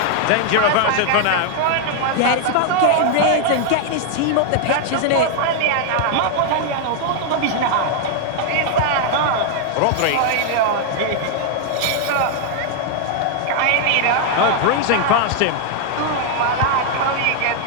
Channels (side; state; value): both; different; correlation 0.00